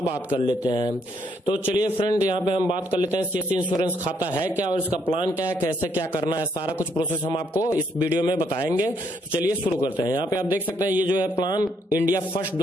बात कर लेते हैं। तो चलिए फ्रेंड यहाँ पे हम बात कर लेते हैं सीएससी इंश्योरेंस खाता है क्या और इसका प्लान क्या है, कैसे क्या करना है, सारा कुछ प्रोसेस हम आपको इस वीडियो में बताएंगे। तो चलिए शुरू करते हैं। यहाँ पे आप देख सकते हैं ये जो है प्लान इंडिया फर्स्ट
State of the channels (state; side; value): normal; both; correlation 0.71